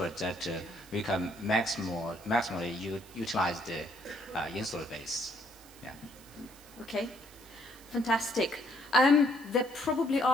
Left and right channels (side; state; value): right; noise; hiss, 22 dB below the sound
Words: that we can maximally utilize the installed base. Yeah. Okay, fantastic. There probably